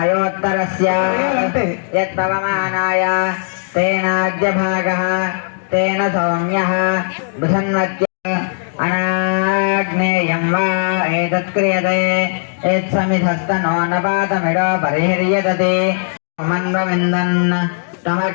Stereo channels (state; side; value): silent; right; digital silence